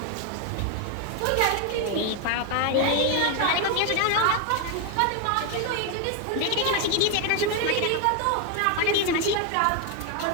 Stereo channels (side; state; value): both; different; correlation 0.01